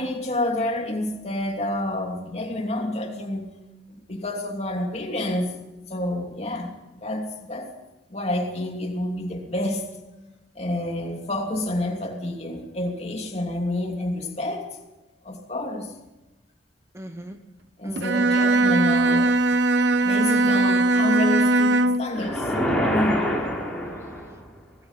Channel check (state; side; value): normal; both; correlation 0.54